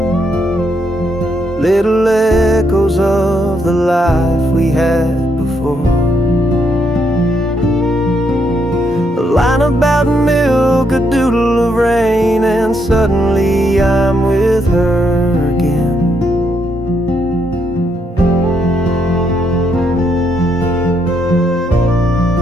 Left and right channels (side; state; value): both; normal; correlation 0.76